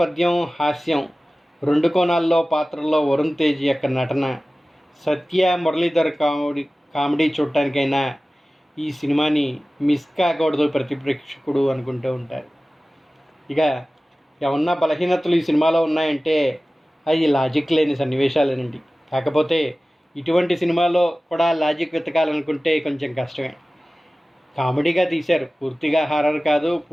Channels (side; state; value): both; normal; correlation 0.97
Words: హాస్యం, రెండు కోణాల్లో పాత్రల్లో వరుణ్ తేజ్ యొక్క నటన, సత్య, మురళీధర్ కామెడీ చూడటానికైనా ఈ సినిమాని మిస్ కాకూడదు ప్రతి ప్రేక్షకుడు అనుకుంటూ ఉంటారు. ఇక ఏమన్నా బలహీనతలు ఈ సినిమాలో ఉన్నాయంటే అవి లాజిక్ లేని సన్నివేశాలేనండి. కాకపోతే ఇటువంటి సినిమాలో కూడా లాజిక్ వెతకాలనుకుంటే కొంచెం కష్టమే. కామెడీగా తీశారు, పూర్తిగా హారర్ కాదు,